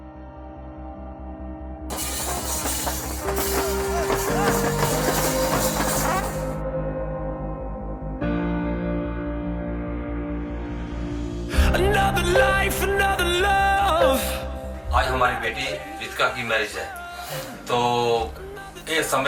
Another life, another love. आज हमारी बेटी रितिका की मैरिज है, तो ये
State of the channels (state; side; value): identical; both; correlation 1.00